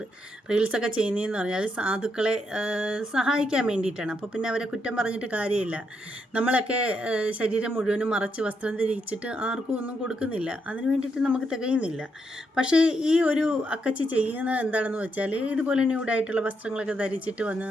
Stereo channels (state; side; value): normal; both; correlation 0.79